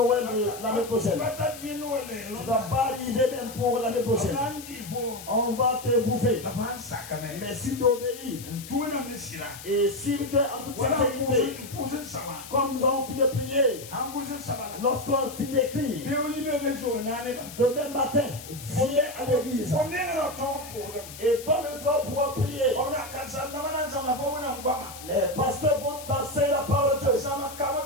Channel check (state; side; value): noise; left; hiss, 14 dB below the sound